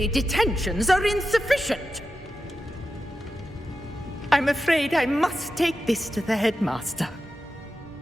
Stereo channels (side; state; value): both; normal; correlation 0.91